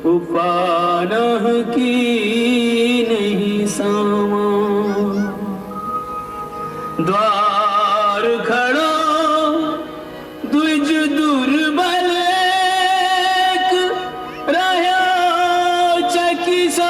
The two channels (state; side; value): identical; both; correlation 1.00